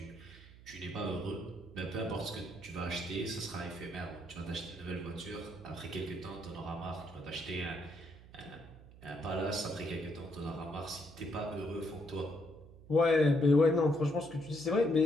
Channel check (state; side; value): noise; right; hum, 19 dB below the sound